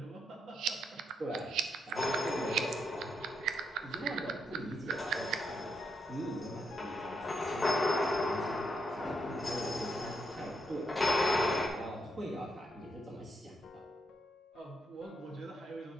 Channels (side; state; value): both; normal; correlation 0.80